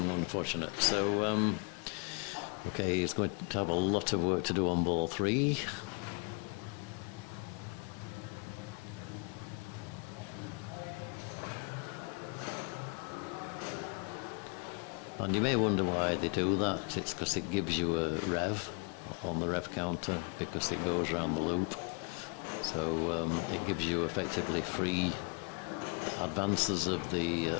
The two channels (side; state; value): right; quieter; 34.9 dB